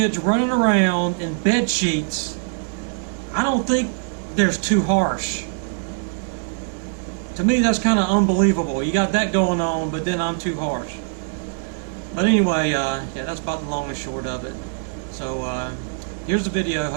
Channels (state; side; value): silent; left; 64 dB below the other